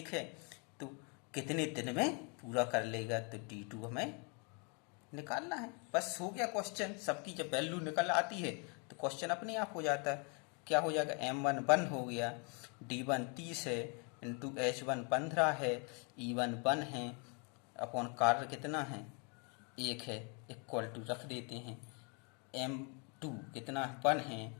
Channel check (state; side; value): quieter; right; 35.4 dB